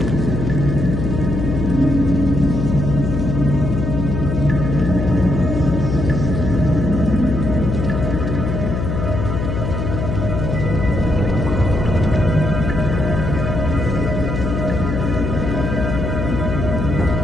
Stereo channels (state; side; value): noise; left; hum, 2 dB below the sound